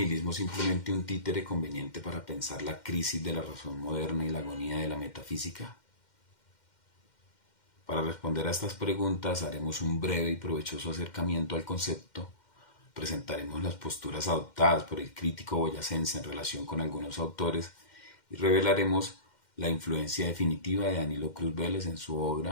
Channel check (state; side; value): late; right; 2.1 ms